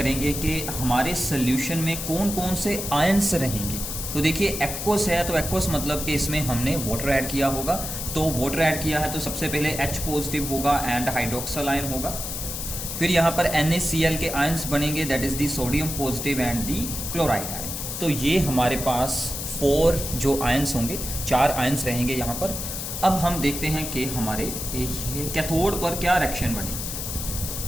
कि हमारे सोल्यूशन में कौन कौन से आयंस रहेंगे। तो देखिए एक्वस है, तो एक्वस मतलब कि इसमें हमने वाटर ऐड किया होगा। तो वाटर ऐड किया है तो सबसे पहले H पॉजिटिव होगा एंड हाइड्रोक्सल आयन होगा। फिर यहाँ पर NaCl के आयंस बनेंगे, that is the sodium positive and the chloride ion. तो ये हमारे पास 4 जो आयंस होंगे, 4 आयंस रहेंगे यहाँ पर। अब हम देखते हैं कि हमारे कैथोड पर क्या रिएक्शन बने।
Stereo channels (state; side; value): noise; left; hiss, 5 dB below the sound